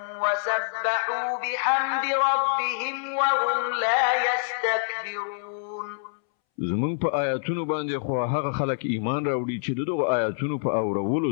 وسبحوا بحمد ربهم وهم لا يستكبرون. زمون په آیاتونو باندې خو هغه خلک ایمان راوړي چې دغه آیاتونو په اورولو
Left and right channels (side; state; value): right; silent; 61 dB below the other